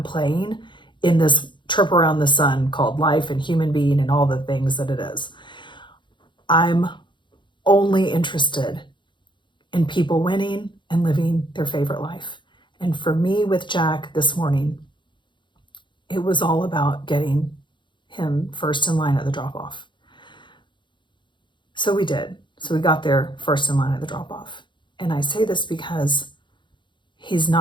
playing in this trip around the sun called life and human being and all the things that it is. I'm only interested in people winning and living their favorite life. And for me with Jack this morning, it was all about getting him first in line at the drop-off. So we did. So we got there first in line at the drop-off. And I say this because he's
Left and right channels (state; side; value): late; right; 0.23 ms